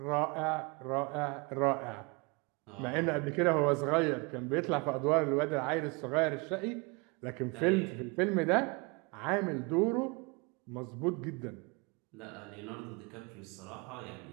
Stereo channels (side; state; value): left; quieter; 29.1 dB